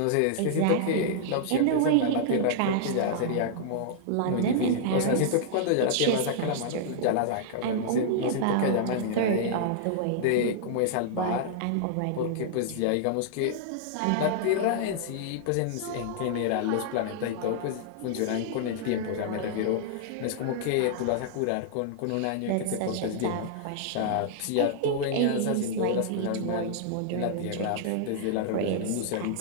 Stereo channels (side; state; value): both; different; correlation -0.01